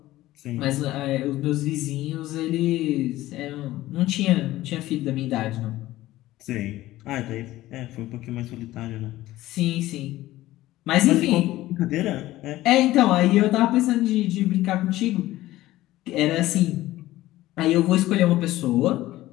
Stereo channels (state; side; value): quieter; right; 16.2 dB